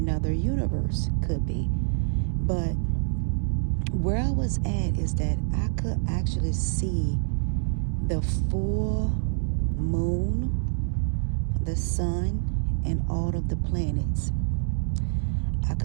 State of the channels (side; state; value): left; silent; digital silence